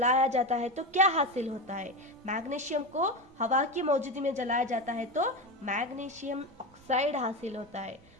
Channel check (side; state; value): both; normal; correlation 0.19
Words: जाता है तो क्या हासिल होता है, मैग्नीशियम को हवा की मौजूदगी में जलाया जाता है तो मैग्नीशियम ऑक्साइड हासिल होता है।